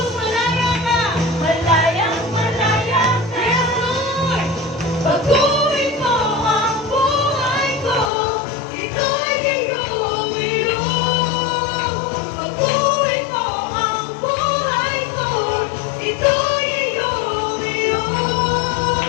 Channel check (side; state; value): right; drops out; at 8.1 s